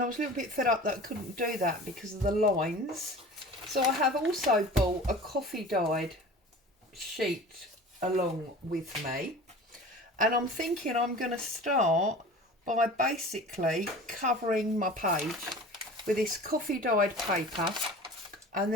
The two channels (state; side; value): normal; both; correlation 0.39